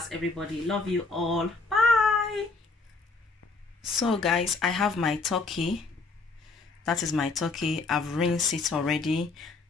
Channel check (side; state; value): right; quieter; 3.9 dB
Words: everybody. Love you all. Bye. So guys, I have my turkey. That is my turkey. I've rinsed it already.